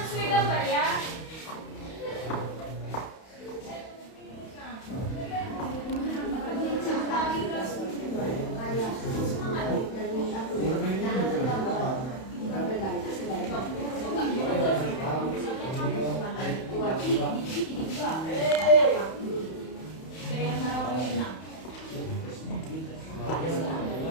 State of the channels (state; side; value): late; right; 31 ms